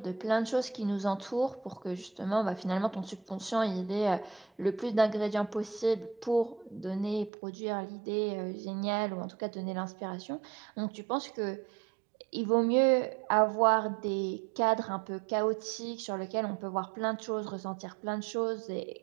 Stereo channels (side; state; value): left; drops out; at 7.3 s